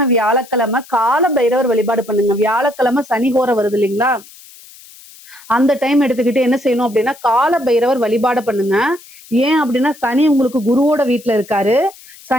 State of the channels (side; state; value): left; noise; hiss, 22 dB below the sound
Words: கால பைரவர் வழிபாடு பண்ணுங்க. வியாழக்கிழமை சனி ஹோரை வருது இல்லைங்களா, அந்த டைம் எடுத்துக்கிட்டு என்ன செய்யணும் அப்படின்னா கால பைரவர் வழிபாடு பண்ணுங்க. ஏன் அப்படின்னா சனி உங்களுக்கு குருவோட வீட்டுல இருக்காரு.